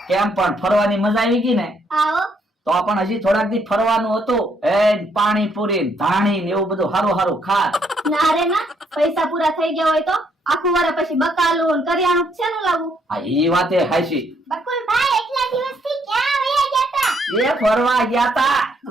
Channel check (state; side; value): normal; both; correlation 0.71